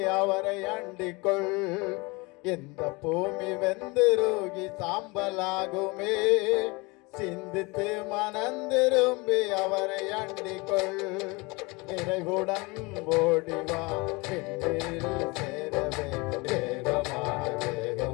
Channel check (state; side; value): quieter; right; 26.0 dB